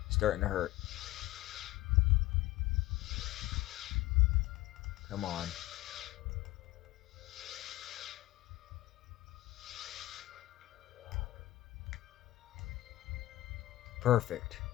Starting to hurt. Come on. Perfect.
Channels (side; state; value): right; quieter; 17.4 dB